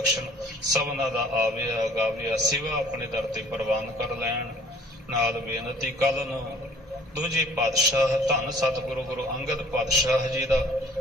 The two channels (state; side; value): normal; both; correlation 0.54